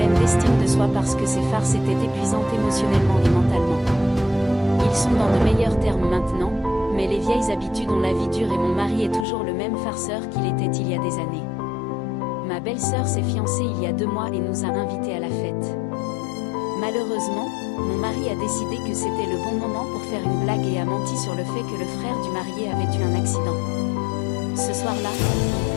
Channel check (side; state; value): right; drops out; at 9.2 s